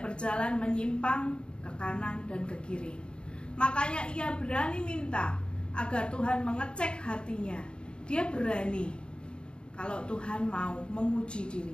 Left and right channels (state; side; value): late; right; 0.052 ms